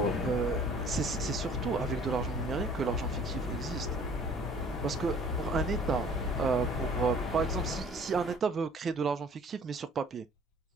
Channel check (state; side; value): normal; both; correlation 0.53